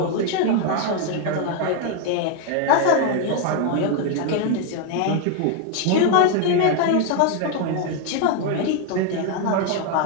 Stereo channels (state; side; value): different; both; correlation 0.01